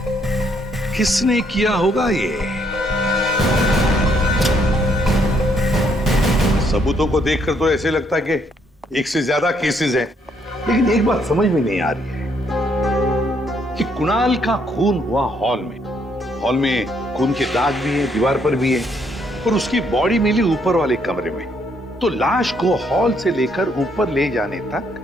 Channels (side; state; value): both; normal; correlation 0.71